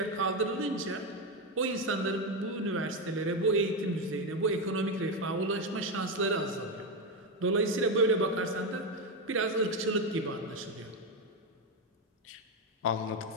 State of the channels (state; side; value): normal; both; correlation 0.10